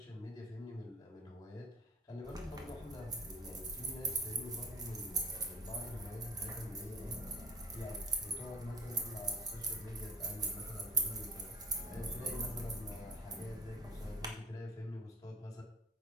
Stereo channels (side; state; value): both; normal; correlation 0.39